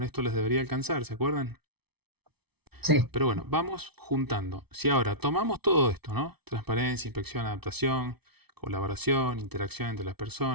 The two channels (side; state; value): left; late; 0.98 ms